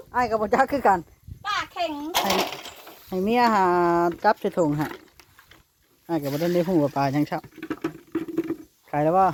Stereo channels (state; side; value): identical; both; correlation 1.00